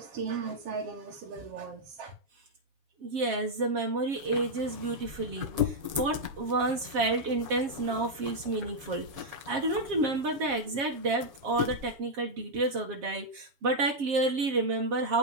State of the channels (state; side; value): late; left; 7.4 ms